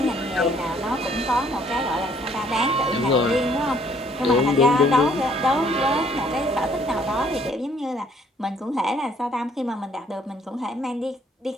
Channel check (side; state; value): both; normal; correlation 0.63